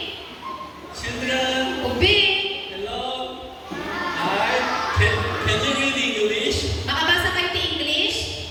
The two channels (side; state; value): both; identical; correlation 1.00